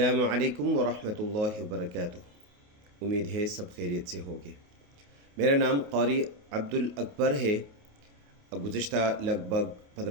علیکم ورحمۃ اللہ وبرکاتہ۔ امید ہے سب خیریت سے ہوگے۔ میرا نام قاری عبدالاکبر ہے۔ گزشتہ لگ بھگ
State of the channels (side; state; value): left; late; 28 ms